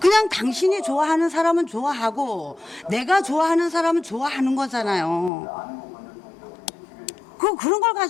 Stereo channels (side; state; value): right; drops out; at 5.3 s